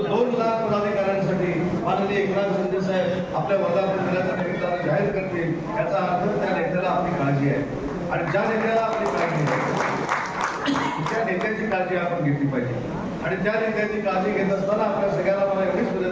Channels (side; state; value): both; identical; correlation 1.00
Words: 2 लाख पदाधिकाऱ्यांसाठी माननीय एकनाथ शिंदे साहेब आपल्या वर्धापन दिनाच्या निमित्तानं जाहीर करतील. याचा अर्थ त्या नेत्याला आपली काळजी आहे. आणि ज्या नेत्याला आपली काळजी आहे त्या नेत्याची काळजी आपण घेतली पाहिजे. आणि त्या नेत्याची काळजी घेत असताना आपल्या सगळ्यांना मला एवढीच